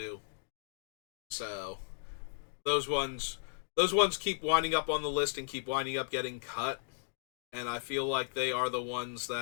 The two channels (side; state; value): right; silent; digital silence